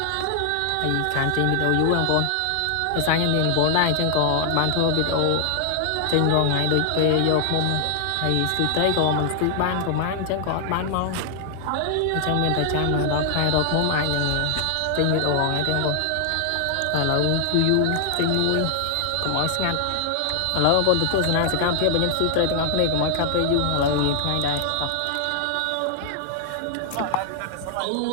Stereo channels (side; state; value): both; different; correlation 0.00